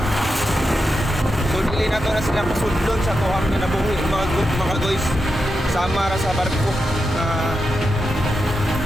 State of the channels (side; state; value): both; normal; correlation 0.88